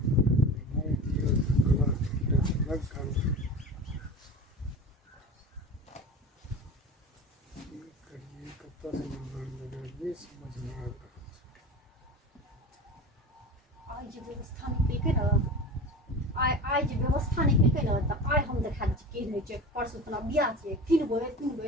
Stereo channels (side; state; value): both; normal; correlation 0.33